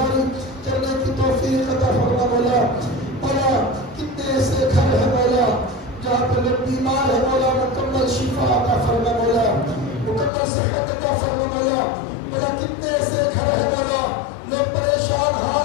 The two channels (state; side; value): drops out; right; at 10.3 s